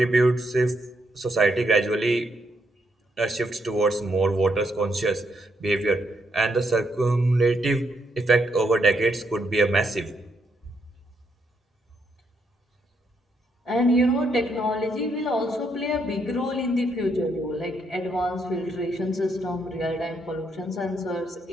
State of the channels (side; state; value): both; normal; correlation 0.76